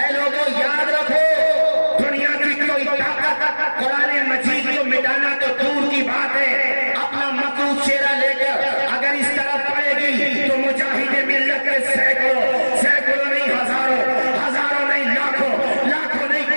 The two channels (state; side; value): inverted; both; correlation -1.00